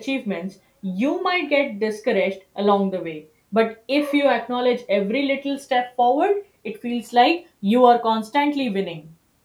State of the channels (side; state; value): both; identical; correlation 1.00